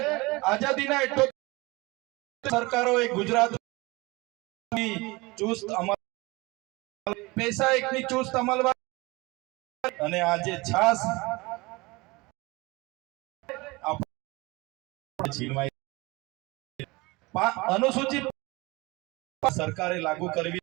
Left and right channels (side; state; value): left; quieter; 23.6 dB